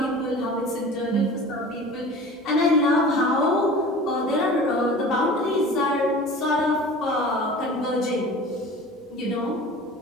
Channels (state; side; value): normal; both; correlation 0.40